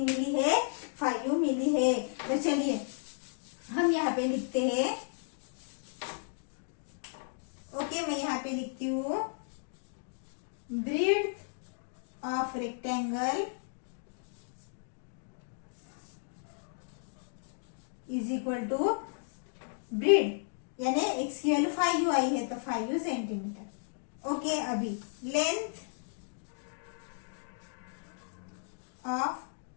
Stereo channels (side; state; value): right; silent; digital silence